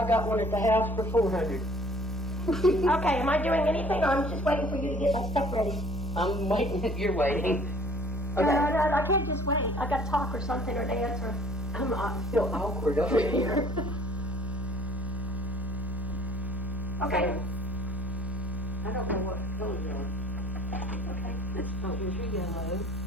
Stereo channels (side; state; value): both; normal; correlation 0.54